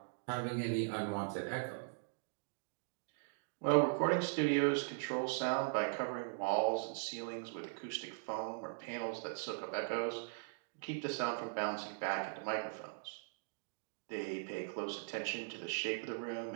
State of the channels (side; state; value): left; silent; digital silence